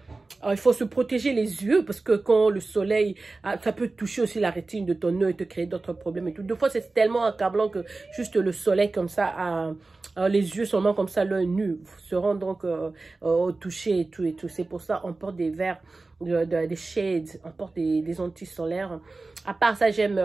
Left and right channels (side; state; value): left; quieter; 3.5 dB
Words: il faut se protéger les yeux parce que quand le soleil, ça peut toucher aussi la rétine de ton œil et te créer d'autres problèmes et tout. Des fois, c'est tellement accablant que juste le soleil comme ça, les yeux seulement comme ça, l'œil nu, seront donc touchés et tout. C'est pour ça on porte des verres, des shades, on porte des anti-solaires. À part ça, j'aime